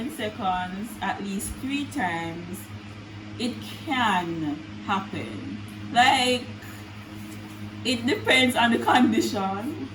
seconds at least 3 times, it can happen. Like, it depends on the condition,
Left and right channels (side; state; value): both; identical; correlation 1.00